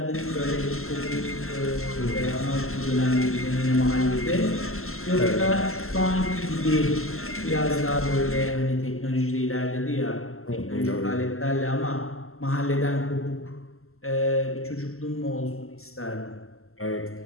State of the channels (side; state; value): right; late; 0.62 ms